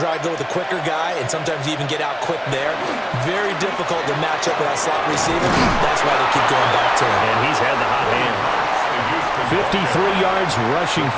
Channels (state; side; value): identical; both; correlation 1.00